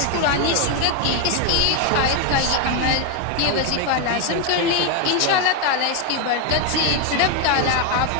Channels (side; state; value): both; different; correlation 0.01